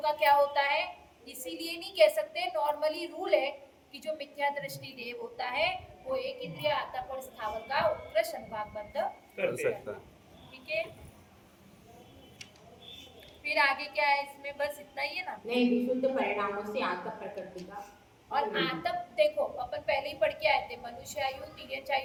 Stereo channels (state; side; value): identical; both; correlation 1.00